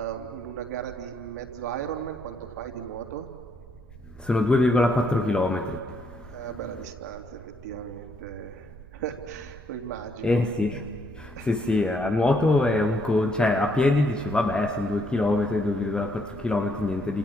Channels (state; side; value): noise; right; rumble, 19 dB below the sound